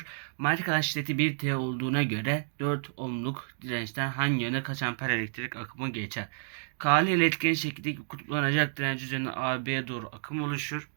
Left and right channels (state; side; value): silent; left; digital silence